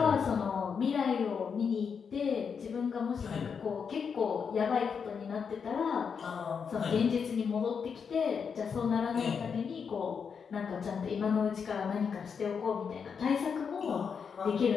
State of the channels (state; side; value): quieter; right; 6.3 dB